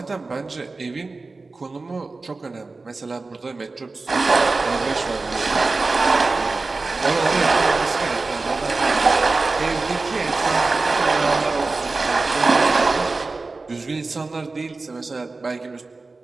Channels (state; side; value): quieter; left; 3.7 dB